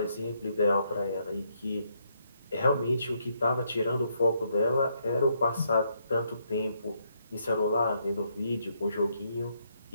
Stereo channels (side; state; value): both; inverted; correlation -0.75